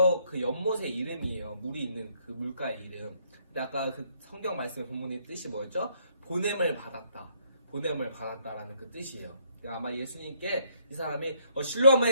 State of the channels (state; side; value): inverted; both; correlation -0.68